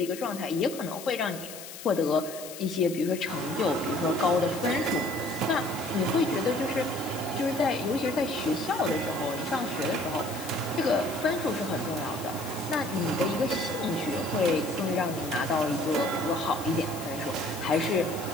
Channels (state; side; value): noise; left; hiss, 12 dB below the sound